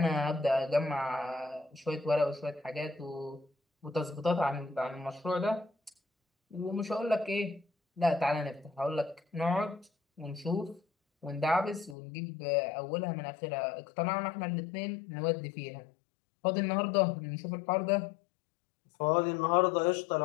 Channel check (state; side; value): drops out; right; at 12.0 s